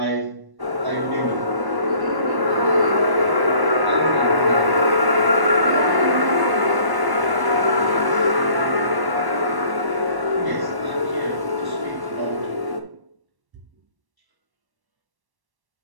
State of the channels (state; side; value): late; left; 1.1 ms